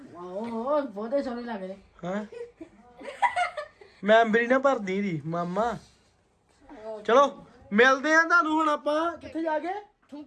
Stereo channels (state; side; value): identical; both; correlation 1.00